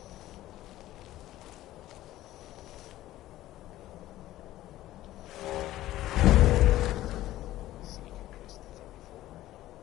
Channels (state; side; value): quieter; right; 14.9 dB